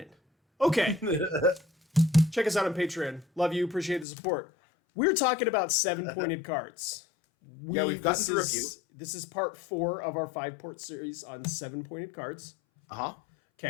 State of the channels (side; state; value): right; drops out; at 4.0 s